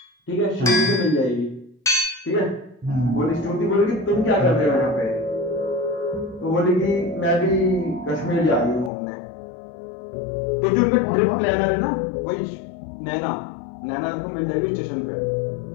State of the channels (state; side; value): drops out; right; at 8.9 s